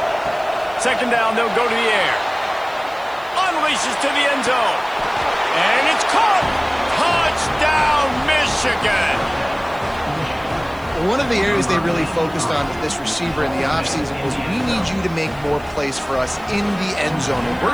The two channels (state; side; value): noise; right; hiss, 26 dB below the sound